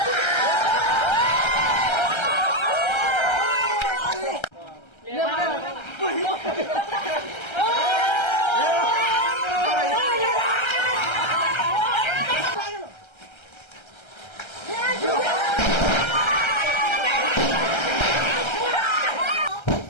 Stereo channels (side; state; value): right; late; 1.3 ms